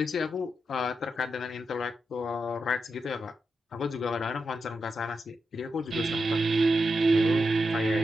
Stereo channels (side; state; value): both; normal; correlation 0.86